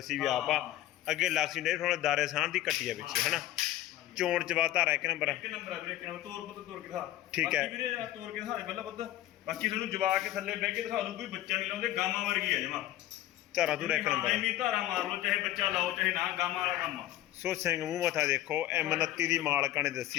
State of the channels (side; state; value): right; quieter; 14.2 dB